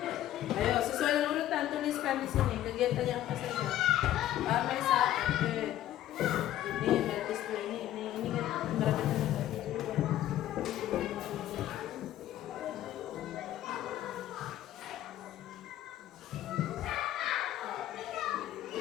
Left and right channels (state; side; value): quieter; right; 12.9 dB